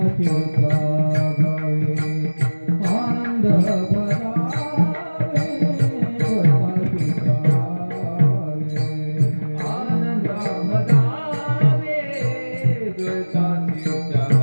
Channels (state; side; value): inverted; both; correlation -1.00